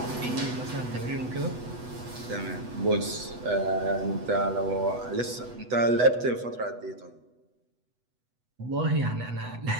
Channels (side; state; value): left; late; 8.1 ms